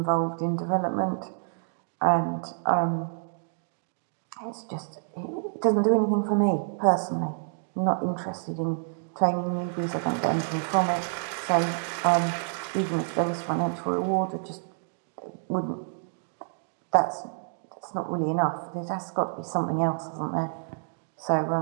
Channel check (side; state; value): left; silent; digital silence